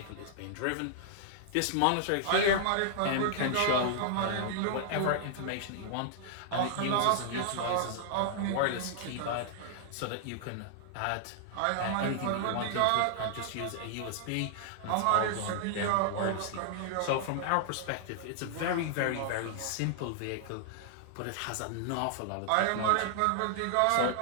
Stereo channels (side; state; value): both; different; correlation -0.01